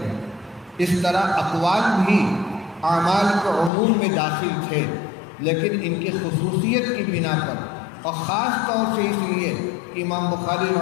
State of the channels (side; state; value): right; drops out; at 3.7 s